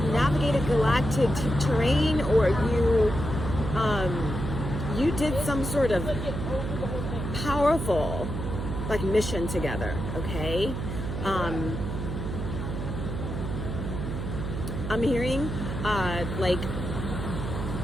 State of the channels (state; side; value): noise; right; hum, 4 dB below the sound